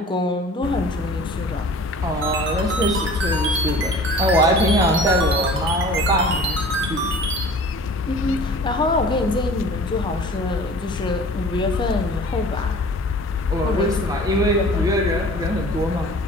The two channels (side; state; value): both; normal; correlation 0.44